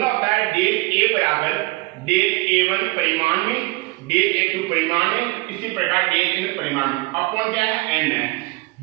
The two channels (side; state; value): left; quieter; 24.1 dB